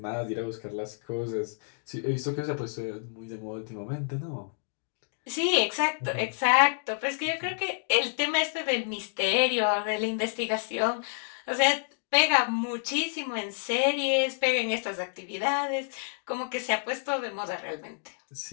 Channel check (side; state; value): right; silent; digital silence